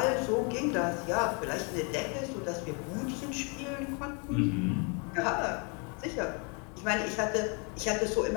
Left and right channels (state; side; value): quieter; right; 34.4 dB